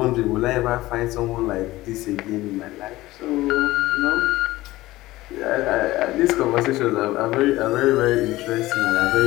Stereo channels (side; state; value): right; quieter; 17.8 dB